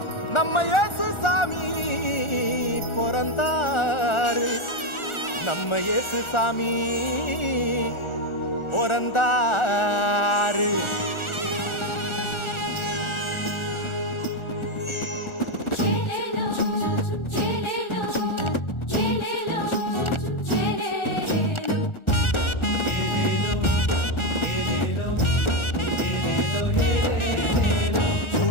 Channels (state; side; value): late; right; 1.4 ms